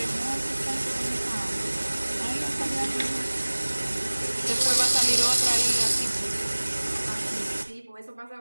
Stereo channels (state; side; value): inverted; both; correlation -1.00